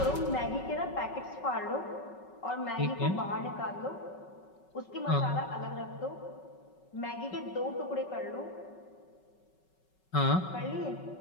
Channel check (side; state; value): right; late; 5.3 ms